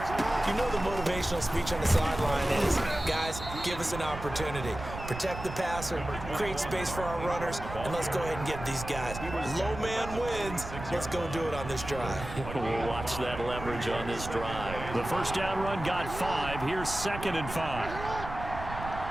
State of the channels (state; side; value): noise; right; rumble, 10 dB below the sound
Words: You know the motivational speech on the sideline is, guys, give us an opportunity. Protect the passer, create space for our runners, and let's go ahead and get these guys. Low man wins. Let's go do it on this drive. We'll watch that leverage on this drive. The first down run got 5. Here's 2nd and 5.